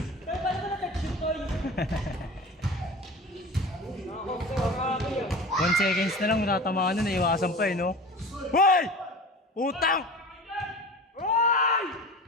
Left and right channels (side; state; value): both; normal; correlation 0.35